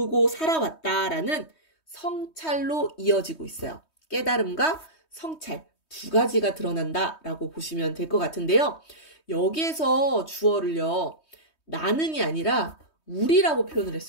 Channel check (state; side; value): late; right; 3.2 ms